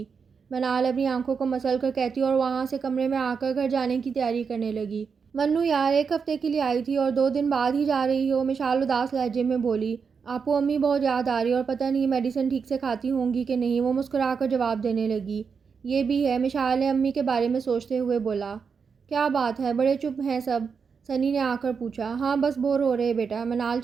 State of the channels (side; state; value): left; quieter; 5.8 dB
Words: منال اپنی آنکھوں کو مسل کر کہتی اور وہاں سے کمرے میں آ کر گھر جانے کی تیاری کرنے لگی۔ منو یار، ایک ہفتے کے لیے آئی تھی اور 2 دن بعد ہی جا رہی ہو؟ مشال اداس لہجے میں بولی۔ آپو امی بہت یاد آ رہی اور پتہ نہیں میڈیسن ٹھیک سے کھاتی ہوں گی کہ نہیں، وہ مسکرا کر جواب دینے لگی۔ یہ بھی ہے، مشال نے امی کے بارے میں سوچتے ہوئے بولا۔ کیا بات ہے، بڑے چپ ہیں سب؟ سنی نے آ کر پوچھا۔ ہاں بس بور ہو رہے بیٹا، منال